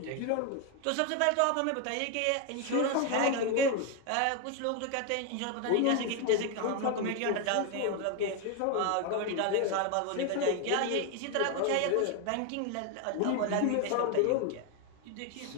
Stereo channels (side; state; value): both; different; correlation 0.01